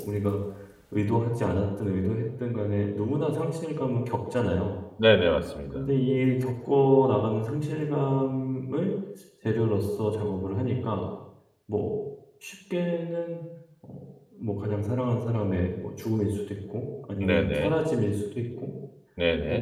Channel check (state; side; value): identical; both; correlation 1.00